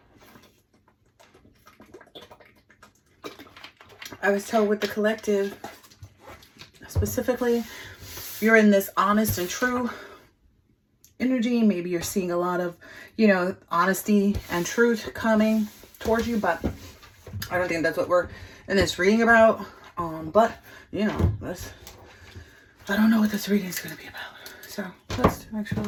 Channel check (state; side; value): identical; both; correlation 1.00